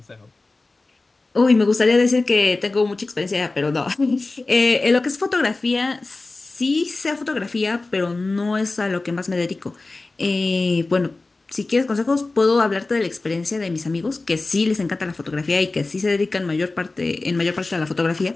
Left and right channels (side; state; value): right; quieter; 3.3 dB